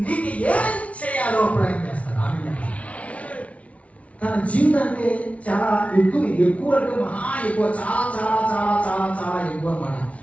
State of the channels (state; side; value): late; right; 0.065 ms